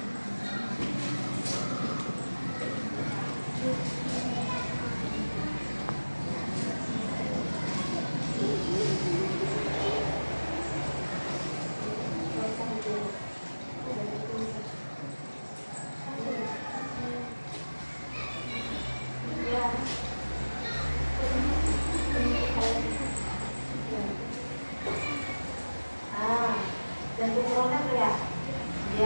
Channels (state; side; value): inverted; both; correlation -1.00